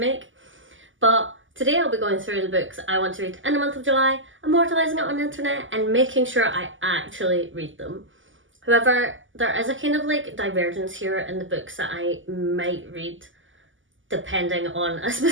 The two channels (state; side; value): late; left; 0.57 ms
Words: But today I'll be going through the books I want to read in the month of July, immortalising it on the internet and making sure I actually read them. However, there is a kind of like divergence here in the books that I might read depending on a